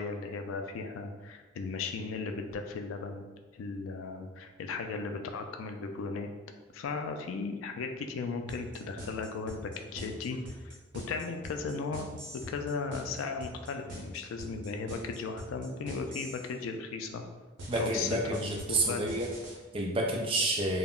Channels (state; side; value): normal; both; correlation 0.27